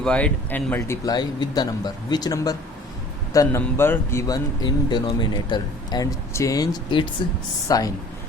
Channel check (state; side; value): normal; both; correlation 0.49